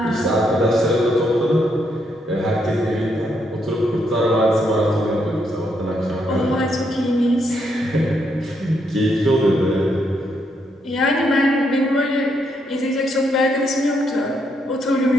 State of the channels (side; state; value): both; normal; correlation 0.76